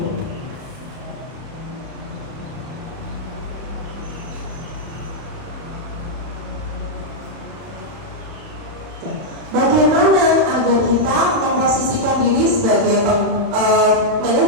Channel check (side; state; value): left; late; 31 ms